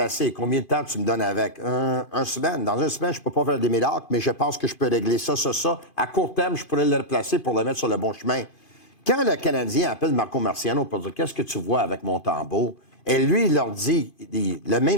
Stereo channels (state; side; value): late; right; 2.8 ms